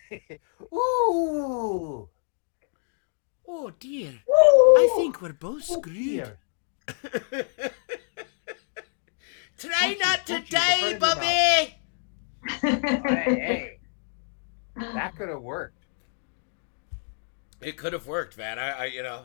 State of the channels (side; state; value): right; silent; digital silence